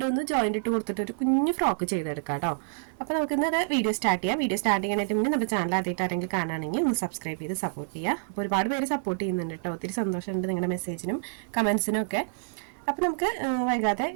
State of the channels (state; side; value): silent; left; digital silence